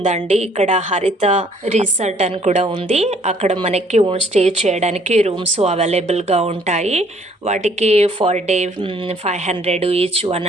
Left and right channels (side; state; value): both; normal; correlation 0.61